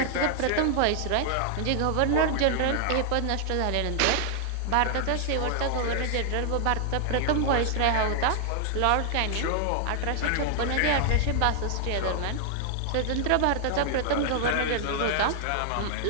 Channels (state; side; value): different; both; correlation -0.01